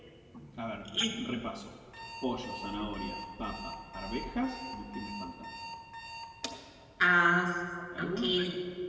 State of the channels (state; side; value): identical; both; correlation 1.00